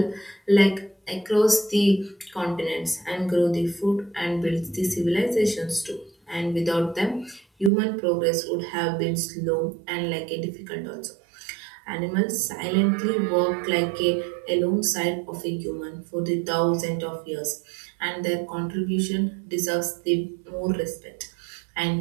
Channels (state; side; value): drops out; left; at 7.7 s